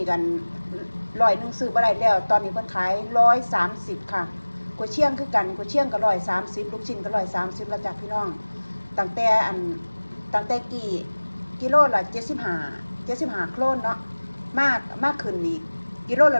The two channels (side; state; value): both; inverted; correlation -1.00